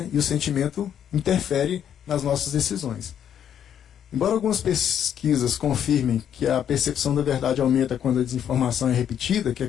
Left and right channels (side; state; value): right; quieter; 9.3 dB